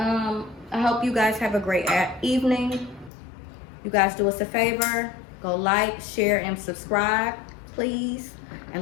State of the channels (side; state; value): right; drops out; at 3.1 s